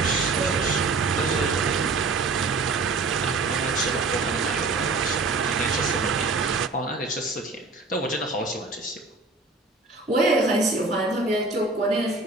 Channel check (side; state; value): left; quieter; 3.7 dB